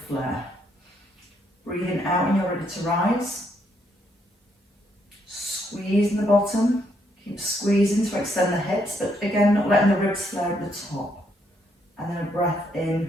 flare. Breathing out when you're ready to rise. Squeeze in the bottom. Keep squeezing to extend the hips, but again, not letting the ribs flare at the top. And then a breath in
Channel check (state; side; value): normal; both; correlation 0.74